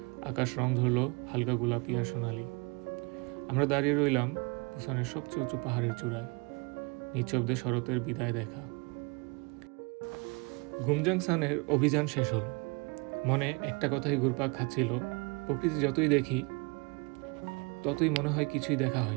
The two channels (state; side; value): quieter; left; 30.0 dB